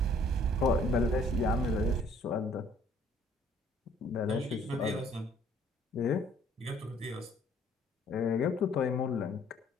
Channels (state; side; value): normal; both; correlation 0.59